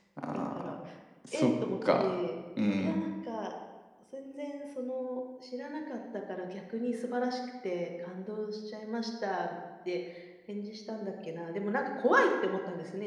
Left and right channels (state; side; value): identical; both; correlation 1.00